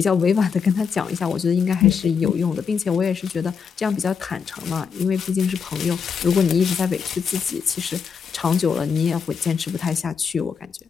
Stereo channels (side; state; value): right; quieter; 6.3 dB